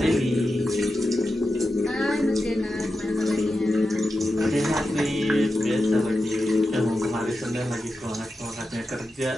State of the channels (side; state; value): both; normal; correlation 0.90